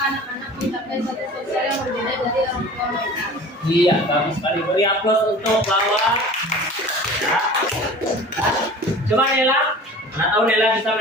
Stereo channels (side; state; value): both; normal; correlation 0.41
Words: anak-anak mencapai status sosial yang berbeda dari orang tua mereka. Iya, bagus sekali. Beri aplaus untuk lawan. Ya. Coba Nela, mana tahu Nela bisa